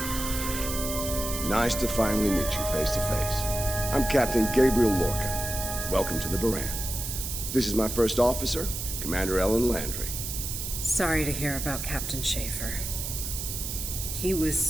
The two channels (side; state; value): right; noise; hiss, 5 dB below the sound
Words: Nice to finally meet you face to face. I'm Captain Gabriel Lorca. Welcome to the Baran. This is my first officer, Commander Ellen Landry. Sorry to hear about Captain Schaefer. He